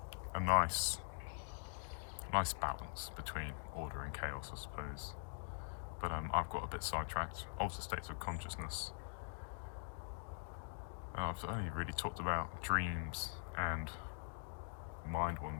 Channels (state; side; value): silent; right; digital silence